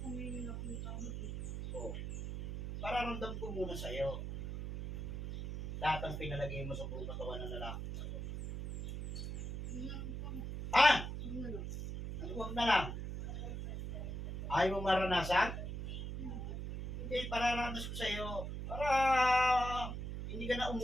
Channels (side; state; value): right; noise; hum, 5 dB below the sound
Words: ngayon ako may tawag eh. O. Pararamdam ko muna sa iyo. Lahat ang pinalagay mo sa buong katawan ng lalaki. Yun lang po. Ha? Ano na lang. Ano wag na lang? Ayaw mo maranasan? Hindi, pararanas ko sa iyo. Para hindi ka na